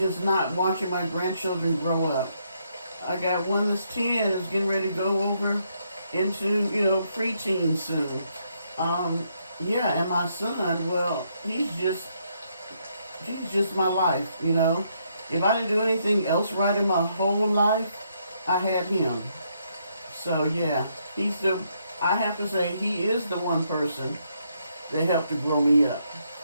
not watching my grandchildren grow up. I got one that's 10, is getting ready to go over into, preteen soon. Yeah, and my son, well, he's just my life, If I didn't do anything else right in my whole life, I had him. So, yeah, I have to say, he is the one person that helped to grow me up.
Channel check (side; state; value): both; inverted; correlation -0.75